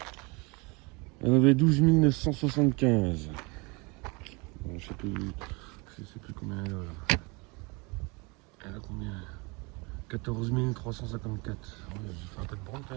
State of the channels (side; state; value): left; quieter; 28.4 dB